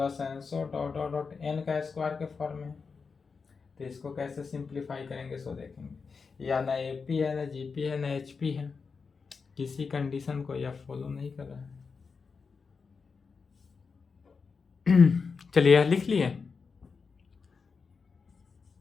ENSO dot dot dot n का स्क्वायर के फॉर्म में। तो इसको कैसे सिंप्लीफाई करेंगे सो देखेंगे, या ना AP है ना GP है ना HP है, किसी कंडीशन को यह फॉलो नहीं कर रहा है। चलिए यह लिख लिए,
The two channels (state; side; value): quieter; right; 5.1 dB